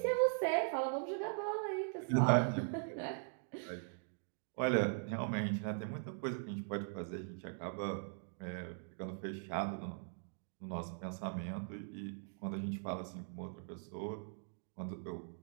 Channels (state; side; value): silent; left; digital silence